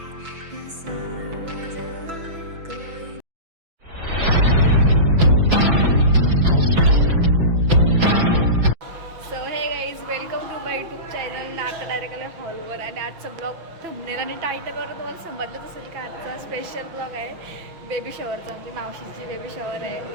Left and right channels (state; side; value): late; left; 6.0 ms